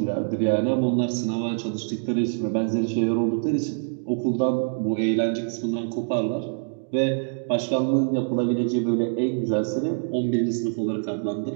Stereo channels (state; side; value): silent; left; digital silence